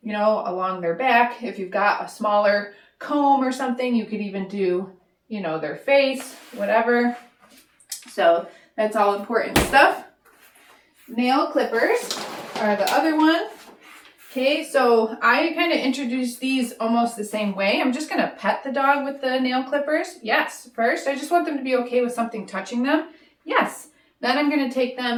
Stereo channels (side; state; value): both; identical; correlation 1.00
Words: you know, along their back. If you've got a smaller comb or something, you could even do, you know, their face, whatever. So that's all important stuff. Nail clippers are the other one. Okay, so I kind of introduced these almost the same way. I'm just going to pet the dog with the nail clippers. Yes, first, I just want them to be okay with something touching them. Yes. Then I'm going to take